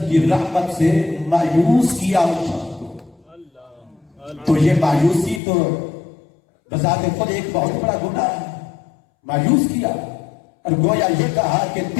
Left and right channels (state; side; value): drops out; right; at 5.4 s